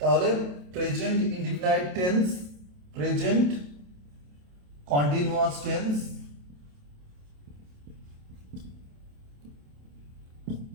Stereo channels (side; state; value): left; late; 28 ms